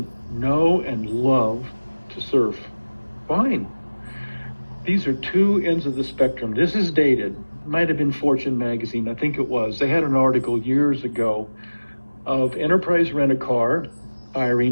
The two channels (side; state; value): both; inverted; correlation -1.00